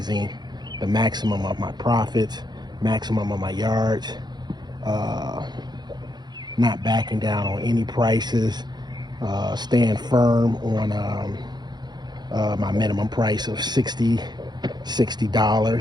the maximum of my profits, maximum of my yards, not backing down on any prices, staying firm on my minimum price of $60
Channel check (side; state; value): left; late; 0.21 ms